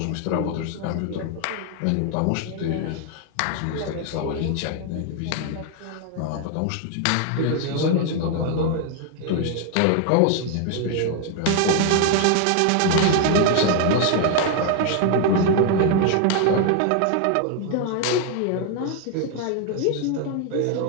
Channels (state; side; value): different; both; correlation 0.00